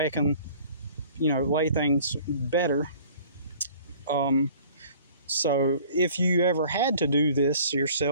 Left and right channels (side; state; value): both; inverted; correlation -0.51